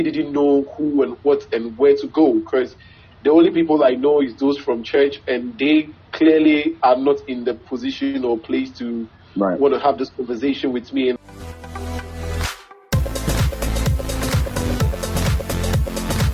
didn't know who and what and where to go because the only people I know is those from church and they clearly are not in the position or place to want to have this conversation with me.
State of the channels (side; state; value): both; identical; correlation 1.00